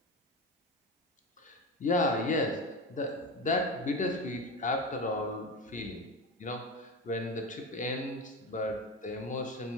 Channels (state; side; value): normal; both; correlation 0.22